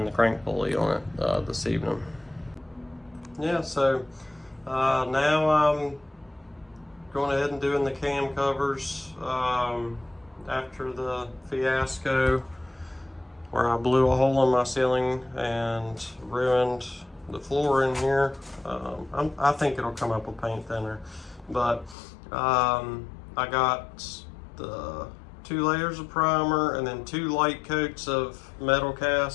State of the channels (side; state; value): right; drops out; at 22.0 s